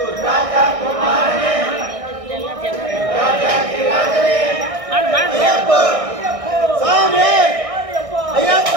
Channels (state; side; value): late; left; 1.6 ms